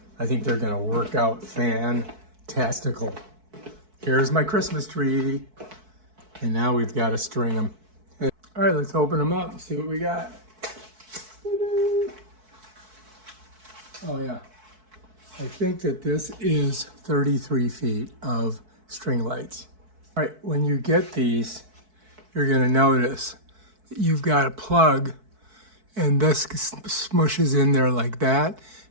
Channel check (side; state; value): left; late; 4.6 ms